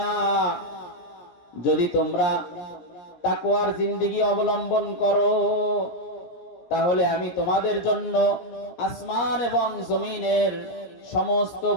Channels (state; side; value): late; right; 17 ms